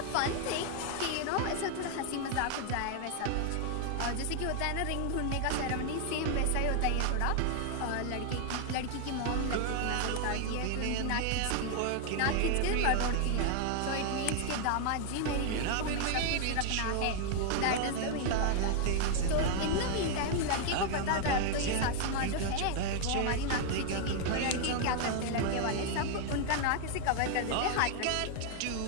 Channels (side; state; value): both; different; correlation 0.00